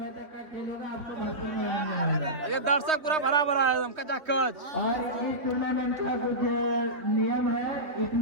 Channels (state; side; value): late; left; 3.3 ms